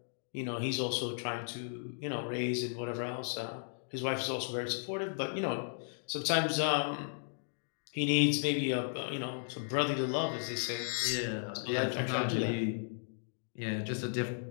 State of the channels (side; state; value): right; silent; digital silence